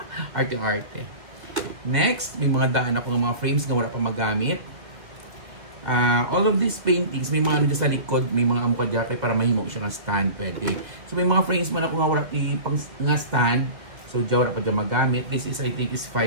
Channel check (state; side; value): late; left; 2.2 ms